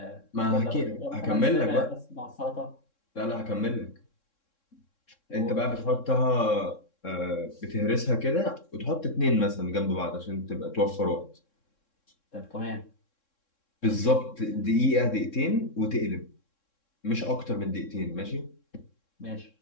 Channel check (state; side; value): late; right; 3.6 ms